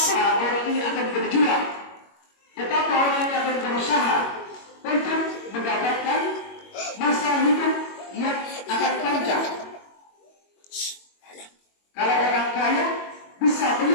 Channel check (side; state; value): right; late; 21 ms